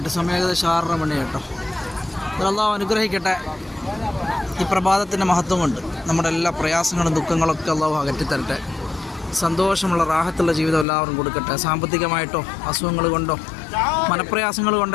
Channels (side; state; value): right; drops out; at 10.9 s